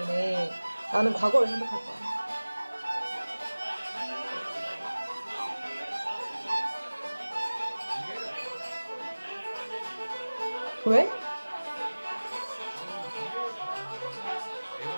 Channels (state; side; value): inverted; both; correlation -1.00